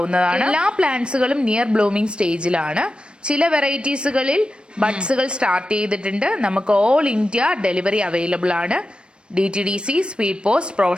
എല്ലാ പ്ലാന്റ്സുകളും നിയർ ബ്ലൂമിംഗ് സ്റ്റേജിലാണ്. ചില വെറൈറ്റീസുകളിൽ ബഡ്സുകൾ സ്റ്റാർട്ട് ചെയ്തിട്ടുണ്ട്. നമുക്ക് ഓൾ ഇന്ത്യ ഡെലിവറി അവൈലബിൾ ആണ്. DTDC, സ്പീഡ് പോസ്റ്റ്,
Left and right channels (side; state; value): left; late; 0.056 ms